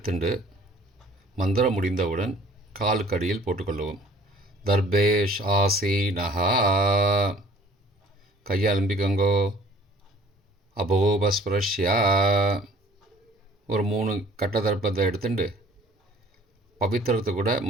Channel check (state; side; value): normal; both; correlation 0.53